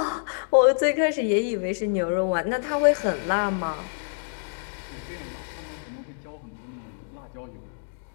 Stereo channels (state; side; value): silent; right; digital silence